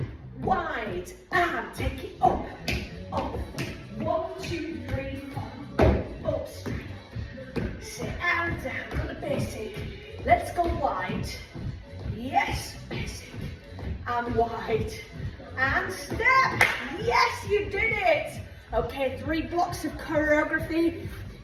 wide and take it up. 1, 2, 3, 4. Up, sit and down. Got the basic. Let's go wide. Yes, basic and wide and step. Yes, you did it. Okay, 3 blocks of choreography.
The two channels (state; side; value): identical; both; correlation 1.00